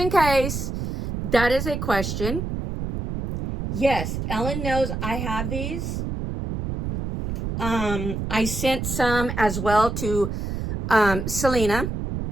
case that is a question, yes, Ellen knows I have these. I sent some as well to Selena.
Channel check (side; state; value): right; noise; rumble, 4 dB below the sound